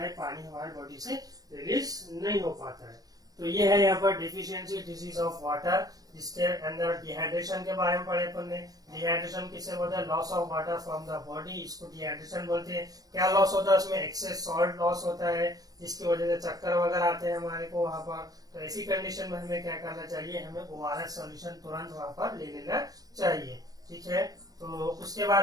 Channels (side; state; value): left; late; 0.18 ms